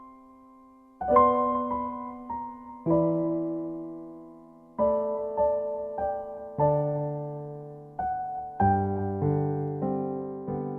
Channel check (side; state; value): both; identical; correlation 1.00